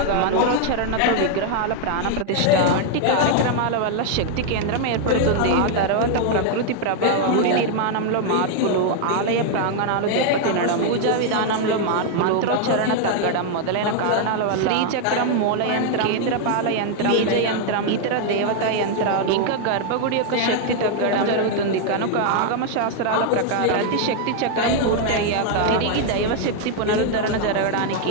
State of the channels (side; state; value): both; different; correlation 0.00